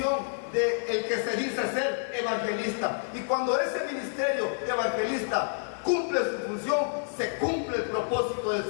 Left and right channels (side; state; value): right; silent; digital silence